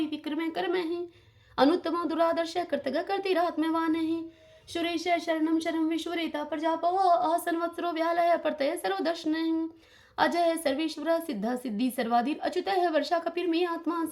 विक्रमे कर्म है अनुत्तम दुरादर्श कर्तग कर्तिरात्मवान है सुरेश शरणम शरणम विश्वरेता प्रजापव असंवत्सरो व्यालय प्रत्यय सर्वदर्शन अजय है सर्वेश्वर सिद्ध सिद्धि सर्वाधीन अच्युत है वर्षा कपिर में आत्मा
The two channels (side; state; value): both; identical; correlation 1.00